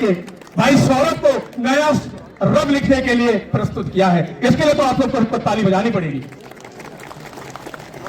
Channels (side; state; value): both; identical; correlation 1.00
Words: भाई सौरभ को नया रब लिखने के लिए प्रस्तुत किया है। इसके लिए तो आप लोग को ताली बजानी पड़ेगी।